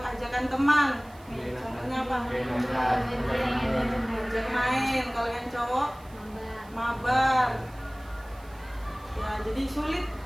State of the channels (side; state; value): right; noise; hiss, 26 dB below the sound